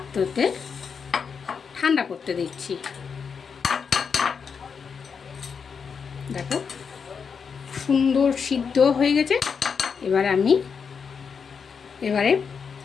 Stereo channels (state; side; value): quieter; right; 6.1 dB